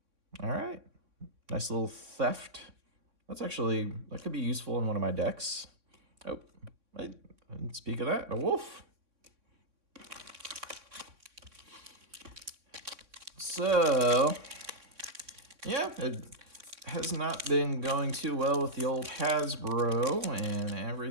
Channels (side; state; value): left; late; 3.6 ms